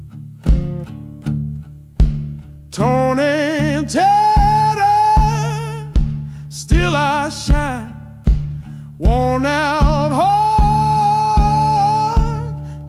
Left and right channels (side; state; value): both; identical; correlation 1.00